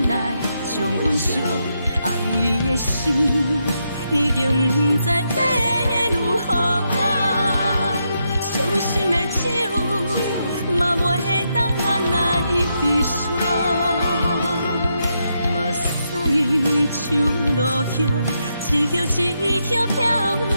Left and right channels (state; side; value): inverted; both; correlation -0.81